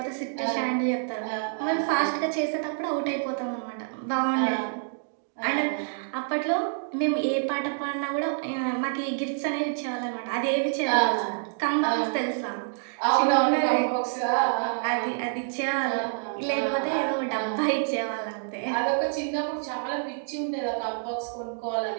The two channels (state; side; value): silent; left; digital silence